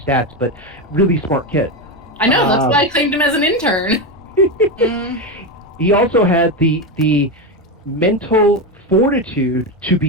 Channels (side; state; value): both; normal; correlation 0.13